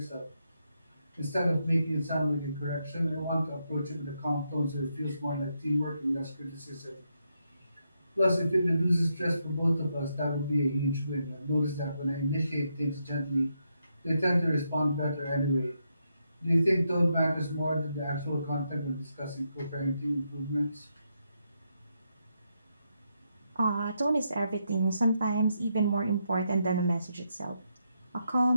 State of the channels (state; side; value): inverted; both; correlation -0.81